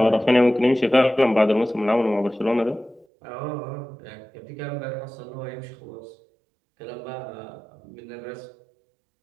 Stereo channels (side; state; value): left; drops out; at 3.1 s